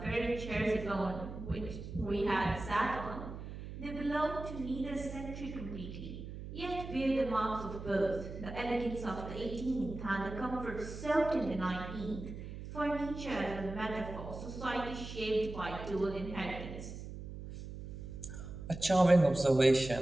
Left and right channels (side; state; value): right; noise; hum, 10 dB below the sound